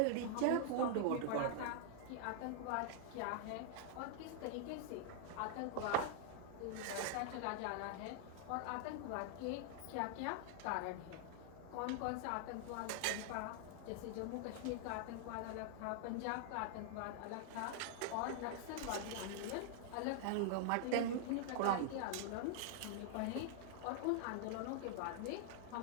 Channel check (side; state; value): both; different; correlation -0.01